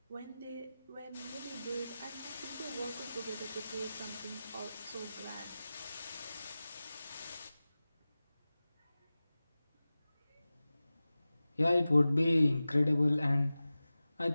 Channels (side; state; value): both; inverted; correlation -0.96